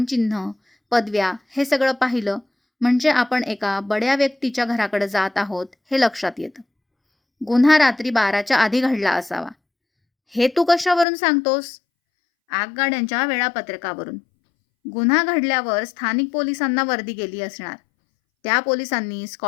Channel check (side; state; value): right; drops out; at 11.1 s